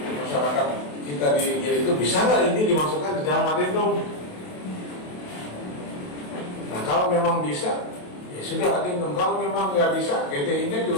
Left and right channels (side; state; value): right; late; 27 ms